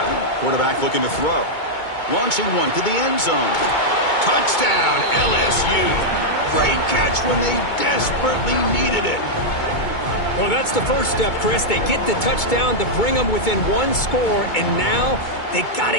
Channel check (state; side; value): late; right; 2.2 ms